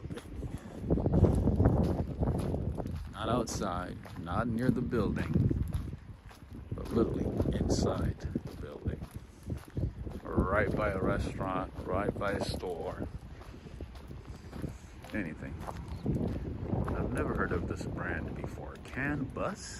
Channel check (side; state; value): both; identical; correlation 1.00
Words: Not outside, not near the building, but literally inside the building. Right by a restaurant, right by a store, anything. I've never heard of this brand before. Can Bus?